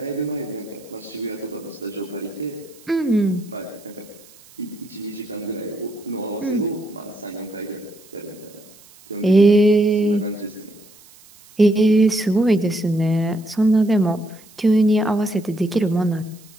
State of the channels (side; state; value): right; noise; hiss, 24 dB below the sound